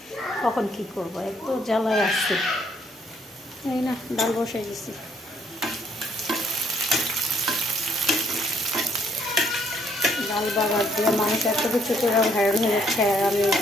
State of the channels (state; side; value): normal; both; correlation 0.67